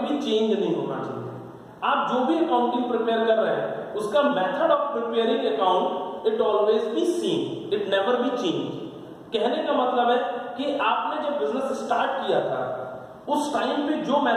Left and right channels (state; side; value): identical; both; correlation 1.00